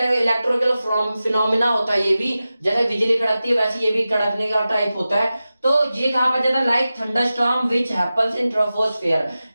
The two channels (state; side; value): inverted; both; correlation -0.94